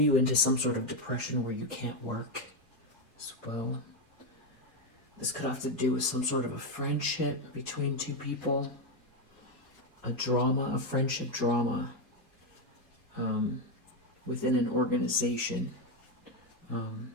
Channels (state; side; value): normal; both; correlation 0.06